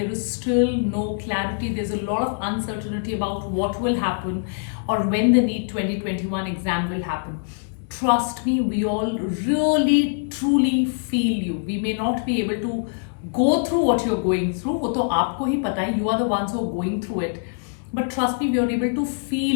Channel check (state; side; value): silent; right; digital silence